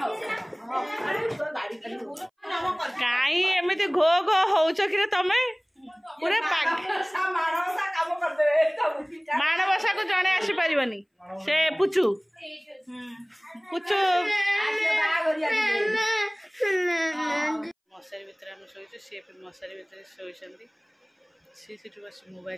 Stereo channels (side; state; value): both; identical; correlation 1.00